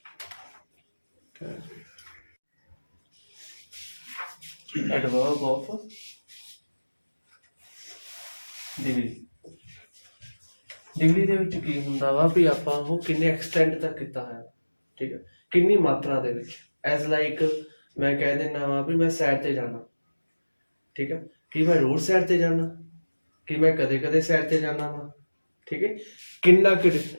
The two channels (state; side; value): inverted; both; correlation -1.00